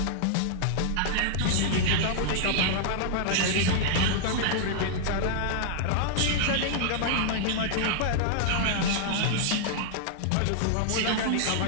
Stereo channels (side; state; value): both; different; correlation -0.01